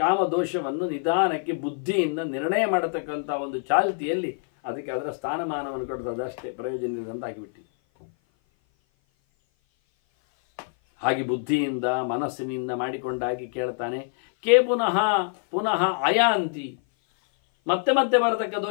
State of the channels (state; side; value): silent; right; 56 dB below the other